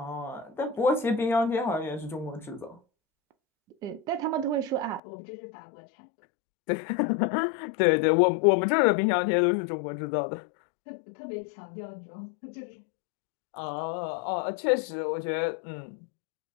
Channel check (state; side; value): drops out; right; at 5.0 s